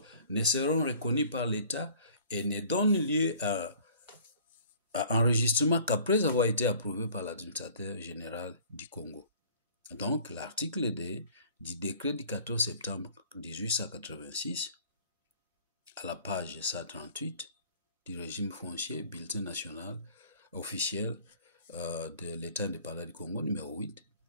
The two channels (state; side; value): inverted; both; correlation -0.51